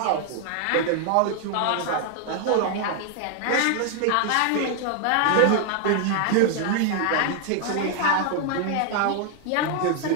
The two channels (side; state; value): both; different; correlation 0.00